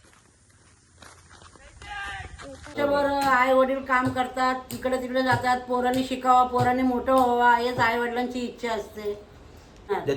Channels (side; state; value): both; identical; correlation 1.00